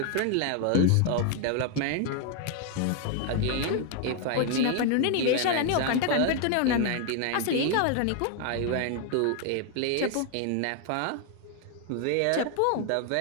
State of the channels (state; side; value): different; both; correlation 0.01